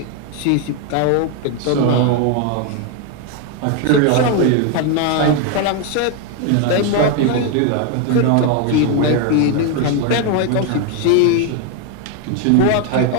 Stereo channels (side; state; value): both; different; correlation 0.01